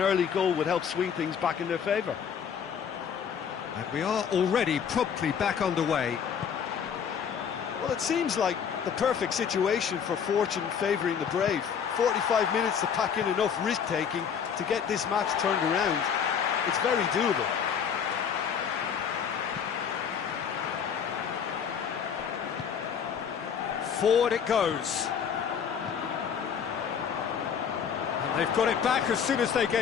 goal would help swing things back in their favour. And we are already promptly back underway. Well, it seems like the perfect situation for fortune favouring the brave. 45 minutes to pack in enough risk-taking to get this match turned around. It's very doable. Forward it goes. And they've got it back as soon as they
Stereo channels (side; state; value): right; quieter; 7.4 dB